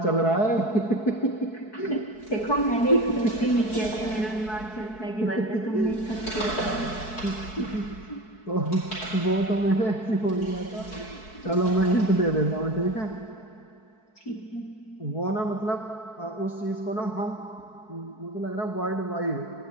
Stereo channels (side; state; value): right; late; 4.6 ms